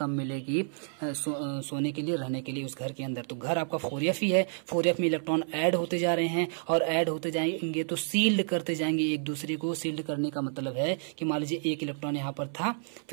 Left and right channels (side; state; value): left; silent; 58 dB below the other